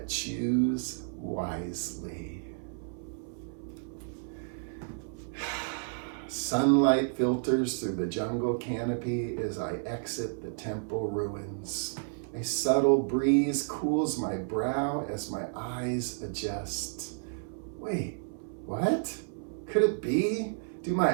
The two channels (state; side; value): silent; left; 57 dB below the other